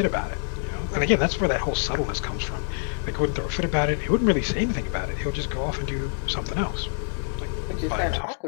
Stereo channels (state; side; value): silent; right; digital silence